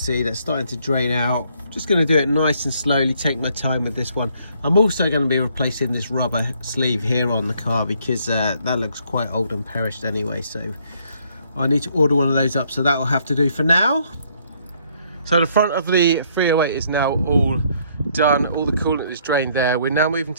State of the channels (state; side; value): inverted; both; correlation -0.67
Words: that's starting to drain out. Just going to do it nice and slowly, take my time with this one. I'm also going to be replacing this rubber sleeve here on the car, because that looks quite old and perished anyway. So I need to order one of those up, so that will have to do for now. So the front of the 308 is now all done. All the coolant is drained there. We're now moving